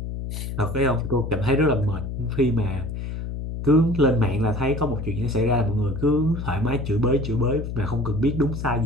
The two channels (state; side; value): noise; left; hum, 6 dB below the sound